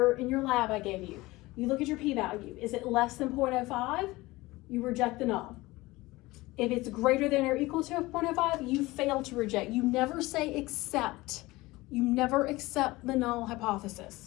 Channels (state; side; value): quieter; right; 20.3 dB